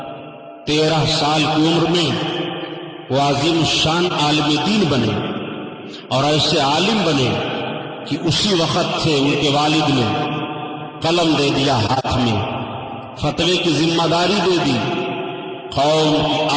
13 سال کی عمر میں وہ عظیم الشان عالم دین بنے اور ایسے عالم بنے کہ اسی وقت سے ان کے والد نے قلم دے دیا ہاتھ میں، فتوے کی ذمہ داری دے دی، قوم کی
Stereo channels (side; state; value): both; identical; correlation 1.00